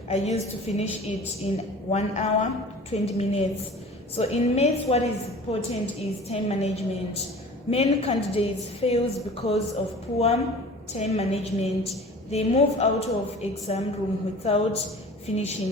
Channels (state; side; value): normal; both; correlation 0.42